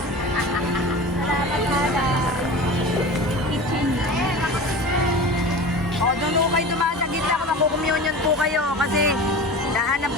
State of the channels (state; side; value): normal; both; correlation 0.34